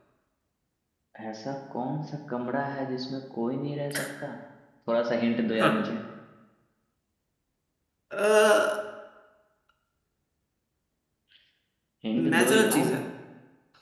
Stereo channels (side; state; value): both; identical; correlation 1.00